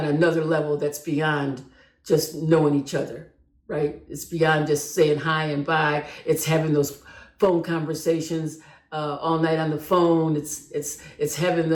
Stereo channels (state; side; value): identical; both; correlation 1.00